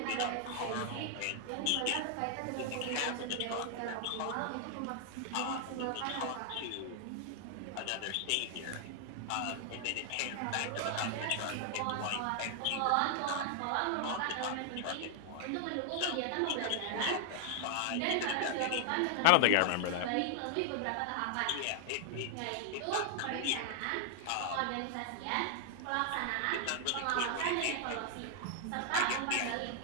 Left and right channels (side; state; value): both; different; correlation 0.00